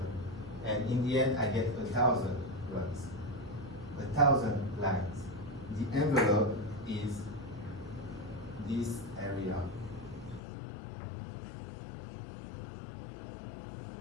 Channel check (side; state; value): right; drops out; at 10.4 s